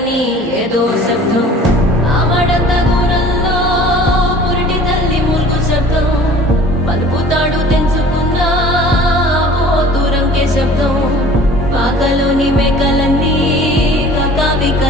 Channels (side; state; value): both; normal; correlation 0.47